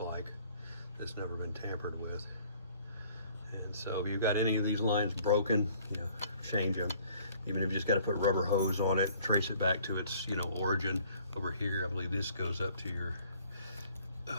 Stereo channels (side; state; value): both; inverted; correlation -0.57